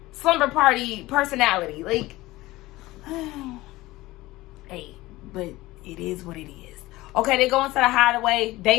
personality. Like, hey, but it is what it is. Okay, they go into the Hideaway,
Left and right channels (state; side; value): quieter; right; 18.8 dB